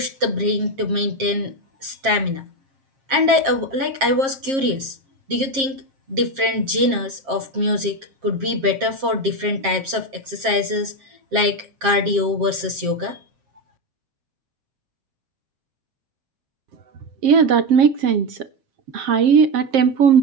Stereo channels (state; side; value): late; left; 7.5 ms